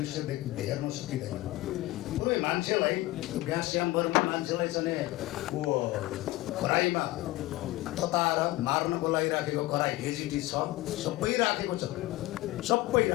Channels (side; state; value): right; quieter; 18.3 dB